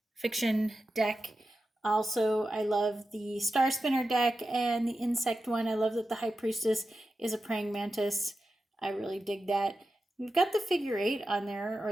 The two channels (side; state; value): both; normal; correlation 0.91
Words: Fiction deck. Also, I love the Star Spinner deck and the Insect one. I love that the High Priestess is a praying mantis. I really dig that. We've got the figure eight on there,